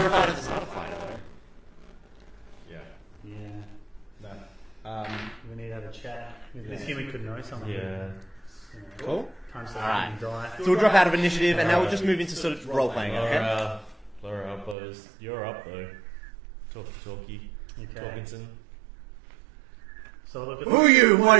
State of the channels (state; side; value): drops out; left; at 14.8 s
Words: fighter, it's not a fighter, though. Yeah. Yeah. No. We need to have a chat. This human could know something. Yeah. Cool. Time to Alright. die. So we'll drop out of initiative, and now we'll just move into sort of role-playing, okay? Laura Uppos. You're up though. Talkie. Okay. Talkinson. So look, Who are you? What